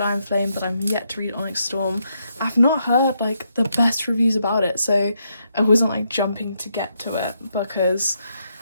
Iron Flame, but I'm yet to read Onyx Storm. I've not heard like the best reviews about it, so I wasn't like jumping to get to it, because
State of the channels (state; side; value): inverted; both; correlation -0.79